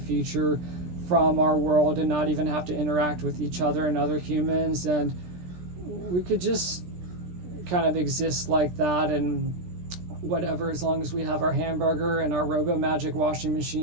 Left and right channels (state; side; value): late; left; 17 ms